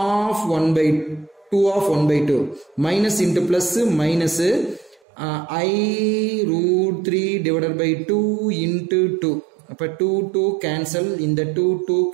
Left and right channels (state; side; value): drops out; left; at 5.0 s